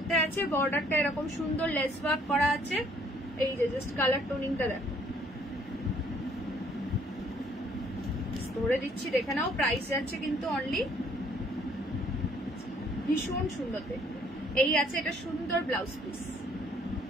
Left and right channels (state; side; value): normal; both; correlation 0.62